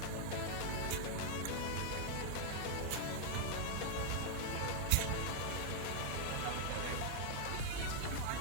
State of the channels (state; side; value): different; both; correlation 0.00